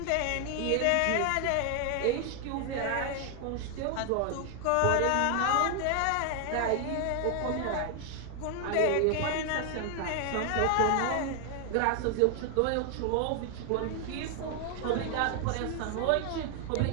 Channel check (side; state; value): both; different; correlation 0.00